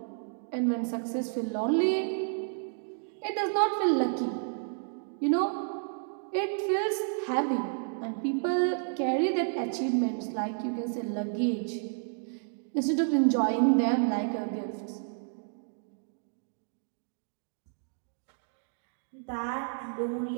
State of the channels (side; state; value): left; silent; digital silence